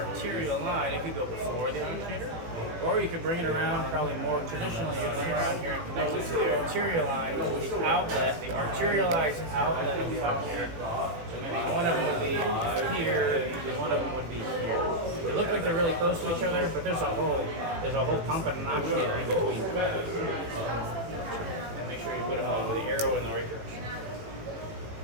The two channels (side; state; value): left; late; 18 ms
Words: line. It could go before the actuator, or you could bring it around, probably more traditionally, you bring it around here and connect it to the arterial line of the outlet, the arterialized outlet of the actuator. So maybe one of them would be here, and one of them would be here. They look like they're really close to each other, but there's a whole pump and an actuator in between. Sure you put them on with the arrow in the right direction.